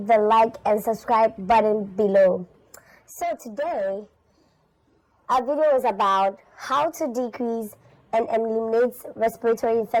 the like and subscribe button below. So today, our video is about how to decrease and eliminate respiratory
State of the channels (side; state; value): both; identical; correlation 1.00